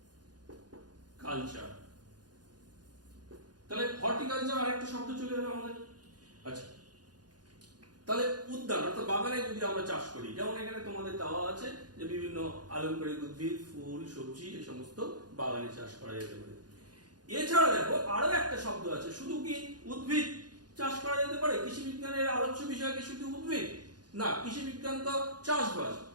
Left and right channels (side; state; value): left; late; 0.69 ms